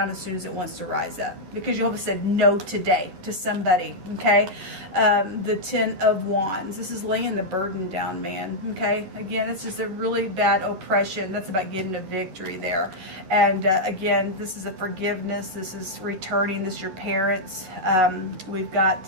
as soon as it wants to rise up. Because Jehovah said no today to somebody, okay? The 10 of Wands. This is laying the burden down, man, okay? Again, it's just a really bad oppression. That's about getting a victory there. And again, this is a forgiveness. This is returning. This is your parents. We've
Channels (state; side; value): late; left; 11 ms